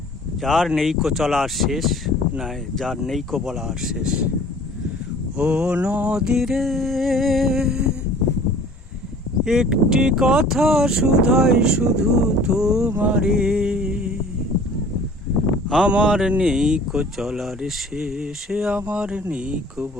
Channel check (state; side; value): normal; both; correlation 0.49